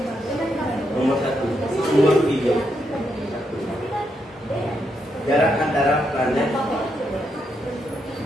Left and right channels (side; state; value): both; normal; correlation 0.80